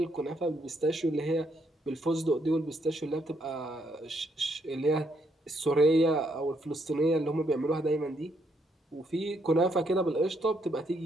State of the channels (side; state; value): both; normal; correlation 0.74